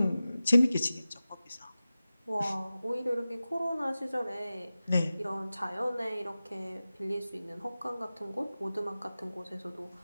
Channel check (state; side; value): inverted; both; correlation -0.95